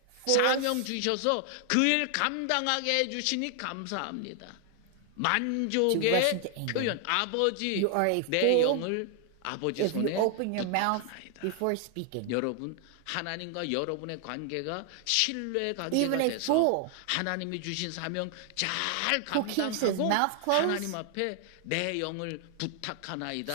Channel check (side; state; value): both; different; correlation 0.00